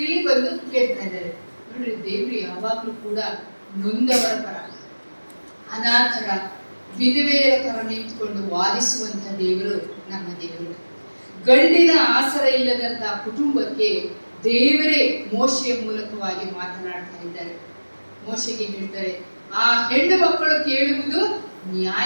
ಇಲ್ಲಿ ಬಂದು ಕೇಳ್ತಾ ಇದ್ದಾರೆ. ನೋಡ್ರಿ, ದೇವ್ರು ಯಾವಾಗ್ಲೂ ಕೂಡ ನೊಂದವರ ಪರ, ಅನಾಥರ, ವಿಧವೆಯರ ಪರ ನಿಂತುಕೊಂಡು ವಾದಿಸುವಂತ ದೇವರು ನಮ್ಮ ದೇವರು. ಗಂಡಿನ ಆಸರ ಇಲ್ಲದಂತ ಕುಟುಂಬಕ್ಕೆ ದೇವರೇ ಮೋಶೆಯ ಮೂಲಕವಾಗಿ ಮಾತನಾಡ್ತಾ ಇದ್ದಾರೆ. ಮೋಶೆಗೆ ಹೇಳ್ತಾರೆ, ಆ ಹೆಣ್ಣು ಮಕ್ಕಳು ಕೇಳುವುದು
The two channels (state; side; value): inverted; both; correlation -1.00